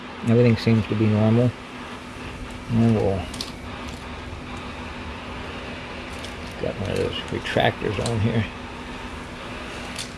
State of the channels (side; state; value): both; identical; correlation 1.00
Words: Everything seems to be normal. And we'll got one of those retractors on here.